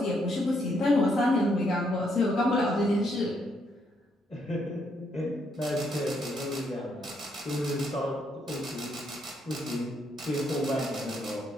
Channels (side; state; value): both; normal; correlation 0.75